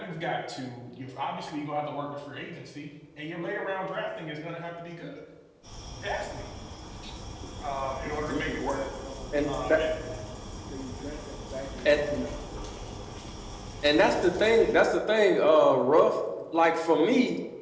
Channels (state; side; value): identical; both; correlation 1.00